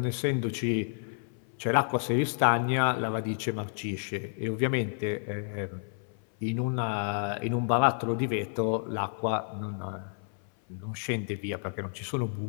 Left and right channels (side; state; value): right; silent; 58 dB below the other